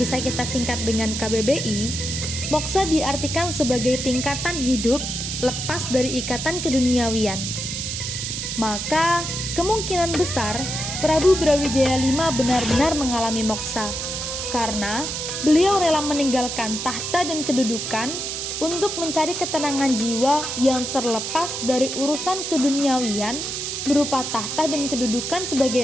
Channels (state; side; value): noise; right; hiss, 4 dB below the sound